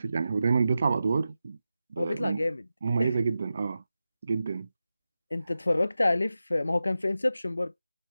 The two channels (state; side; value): inverted; both; correlation -0.92